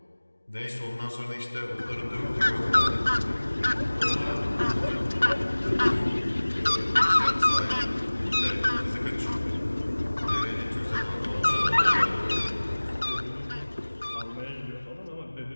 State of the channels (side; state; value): both; inverted; correlation -1.00